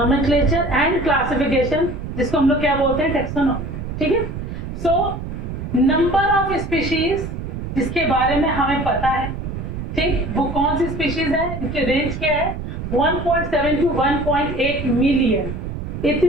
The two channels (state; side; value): noise; right; rumble, 6 dB below the sound